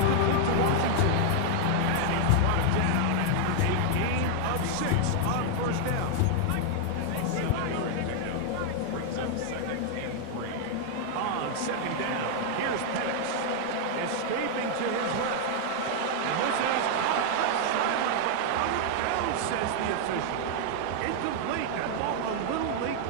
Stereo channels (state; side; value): different; both; correlation 0.00